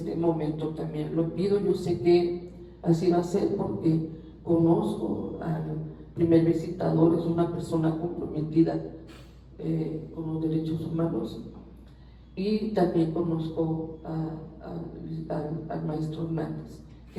momento también lo pido. Yo sé que así va a ser porque conozco al primer visitador, es una persona comprometida con los derechos humanos, y también conozco al maestro Hernández,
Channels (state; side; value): identical; both; correlation 1.00